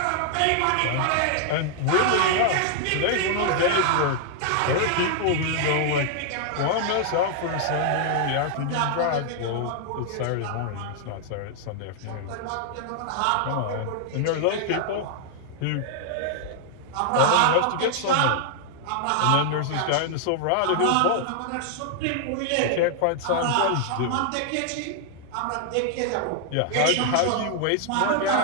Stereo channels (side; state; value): both; different; correlation 0.00